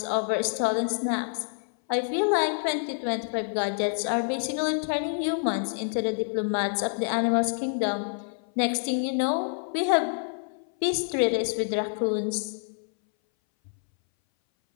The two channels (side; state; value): right; silent; 60 dB below the other